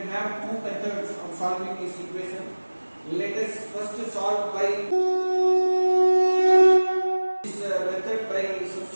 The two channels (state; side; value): inverted; both; correlation -1.00